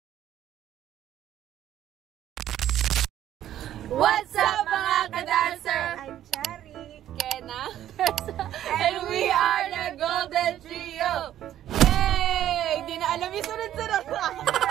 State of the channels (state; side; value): quieter; left; 11.9 dB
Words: What's up mga ka-dancer? I'm Chari. Kena. And we are the Golden Trio. Yay! Di na alam yung sunod-sunod.